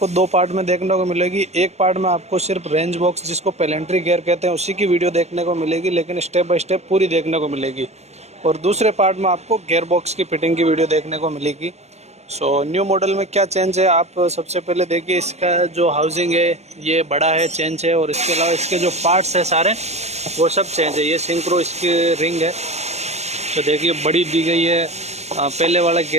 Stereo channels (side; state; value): left; late; 0.32 ms